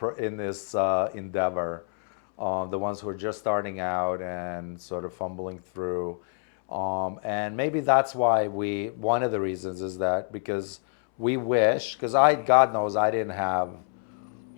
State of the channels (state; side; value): silent; right; 60 dB below the other